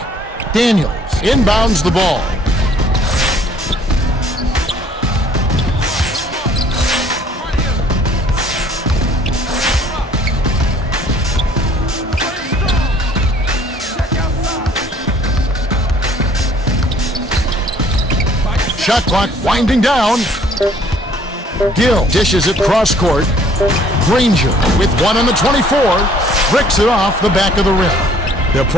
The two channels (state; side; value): normal; both; correlation 0.58